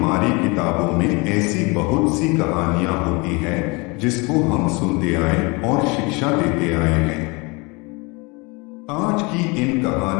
किताबों में ऐसी बहुत सी कहानियां होती हैं जिसको हम सुनते आए और शिक्षा देते आए हैं। आज की इन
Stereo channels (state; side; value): quieter; right; 27.8 dB